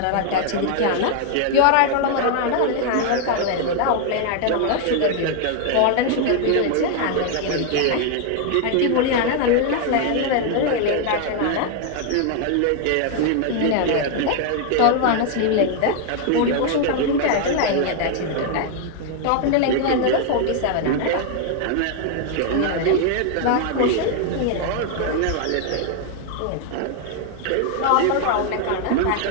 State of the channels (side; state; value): both; different; correlation 0.00